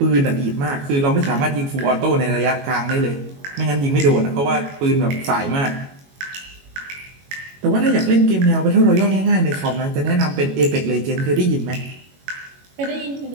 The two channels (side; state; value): left; late; 22 ms